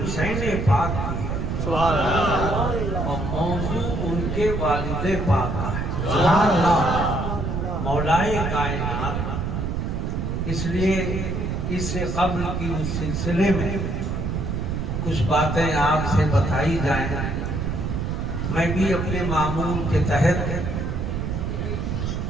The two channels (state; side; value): noise; right; rumble, 2 dB below the sound